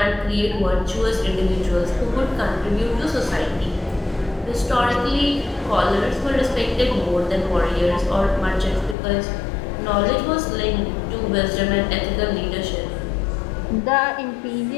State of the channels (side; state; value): right; drops out; at 9.0 s